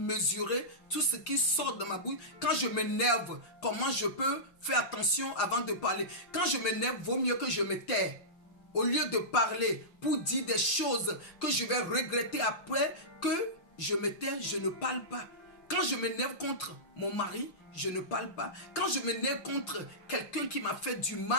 tout ce qui sort de ma bouche? Quand je m'énerve, comment je peux faire attention avant de parler? Quand je m'énerve, vaut mieux que je me taise. Au lieu de parler pour dire des choses que je vais regretter après, que je me tais, je ne parle pas. Quand je m'énerve contre mon mari, je ne parle pas. Quand je m'énerve contre quelqu'un qui m'a fait du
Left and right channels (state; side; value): late; right; 5.9 ms